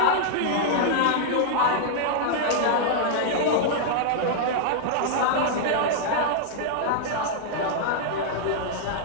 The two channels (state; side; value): different; both; correlation -0.01